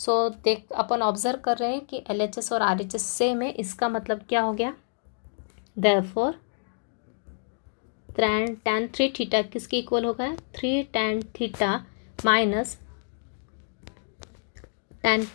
देख अपन ऑब्जर्व कर रहे हैं कि LHS और RHS सेम है, इसका मतलब क्या हो गया, देयरफॉर tan 3 थीटा किसके इक्वल होगा, 3 tan theta minus tan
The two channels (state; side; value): silent; right; digital silence